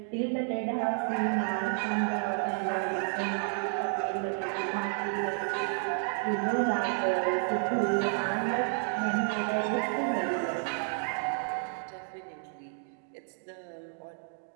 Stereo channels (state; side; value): silent; left; 57 dB below the other